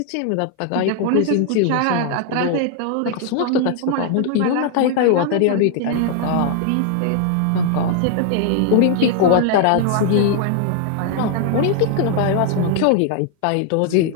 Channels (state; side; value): different; both; correlation 0.00